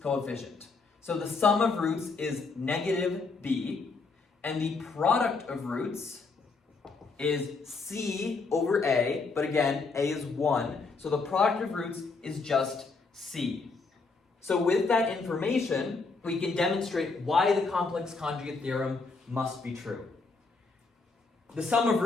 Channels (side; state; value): right; quieter; 4.2 dB